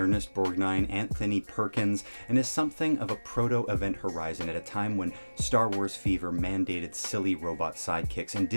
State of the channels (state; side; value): inverted; both; correlation -1.00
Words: Anthony Perkins, and is something of a proto-Event Horizon at a time when Star Wars fever mandated silly robot sidekicks, and